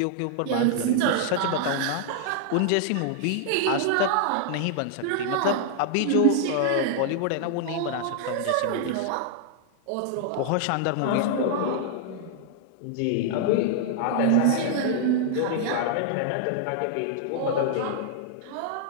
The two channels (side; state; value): both; different; correlation -0.01